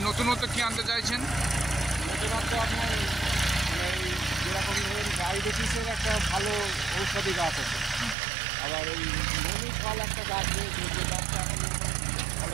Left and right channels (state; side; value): drops out; left; at 8.2 s